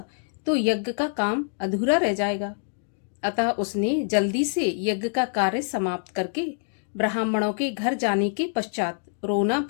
तो यज्ञ का काम अधूरा रह जाएगा। अतः उसने जल्दी से यज्ञ का कार्य समाप्त करके ब्राह्मणों के घर जाने के पश्चात रोना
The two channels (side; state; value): right; silent; 61 dB below the other